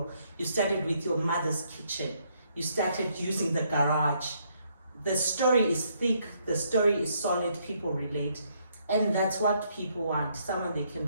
You started with your mother's kitchen. You started using the garage. The story is thick, the story is solid, people relate. And that's what people want, someone they can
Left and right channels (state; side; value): inverted; both; correlation -0.72